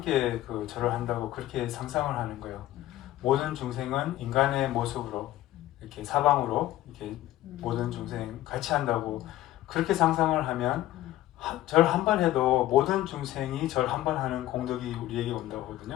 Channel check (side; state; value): right; quieter; 14.6 dB